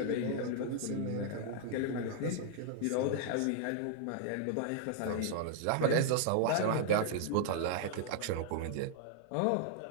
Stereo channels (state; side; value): different; both; correlation 0.00